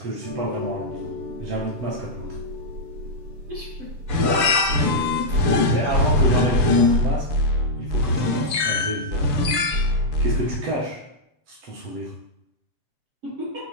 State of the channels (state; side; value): late; left; 6.9 ms